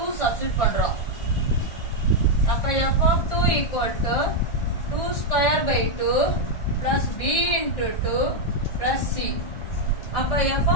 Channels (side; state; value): right; late; 1.6 ms